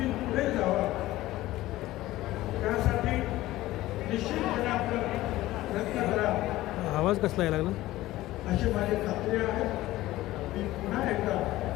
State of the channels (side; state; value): right; quieter; 16.5 dB